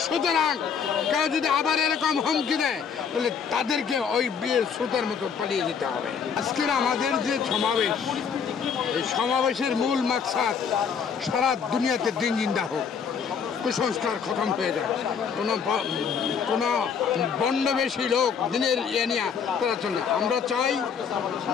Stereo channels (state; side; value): quieter; right; 6.7 dB